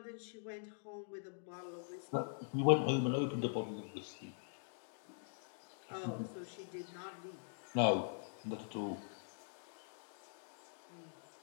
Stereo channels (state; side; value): silent; right; digital silence